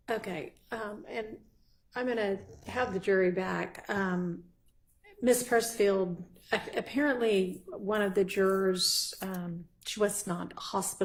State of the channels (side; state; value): both; identical; correlation 1.00